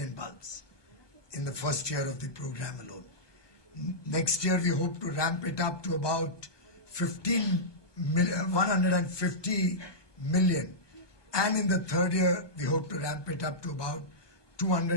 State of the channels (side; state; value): right; late; 1.2 ms